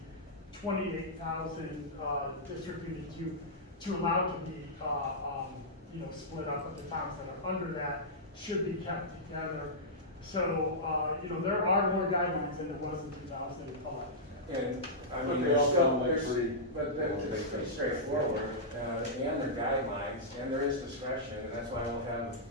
28,000 district units to allow to be split up, but the towns that are under that should be kept together. So, there are more guidelines than there was in 2011. And, I But mean, they there's all still, sound like there's, pretty- but that's pretty straightforward, and there are guidelines, and there is discretion, and that's why we'll have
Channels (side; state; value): both; normal; correlation -0.12